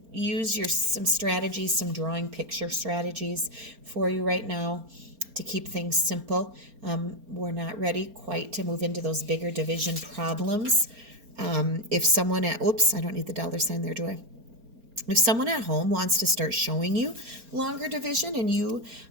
use some strategies, some drawing picture strategies for you right now to keep things simple. We're not ready quite to move into those bigger division problems. If someone I don't need the $sign there, do I? If someone at home wants to start showing you longer division and you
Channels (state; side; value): late; left; 4.3 ms